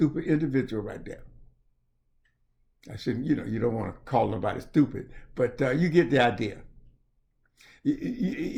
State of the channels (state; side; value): identical; both; correlation 1.00